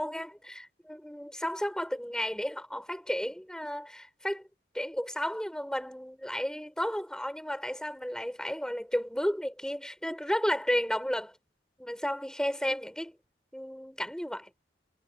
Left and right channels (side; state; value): both; normal; correlation 0.97